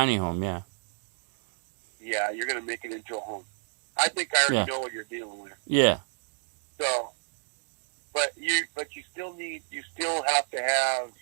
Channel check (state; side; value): silent; left; 58 dB below the other